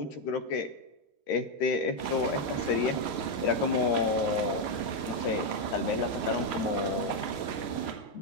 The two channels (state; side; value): late; right; 13 ms